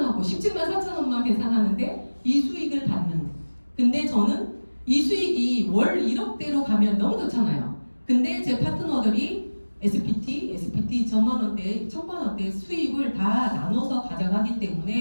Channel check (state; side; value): inverted; both; correlation -1.00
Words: 17만 4천 원만 계산하는데 이 수익을 받는. 근데 저는 이 수익이 월 1억대로 가면 너무 좋잖아요. 근데 제 파트너들이 SPT 2천만 원대, 1,000만 원대 수익을 다 나눠서 가져가기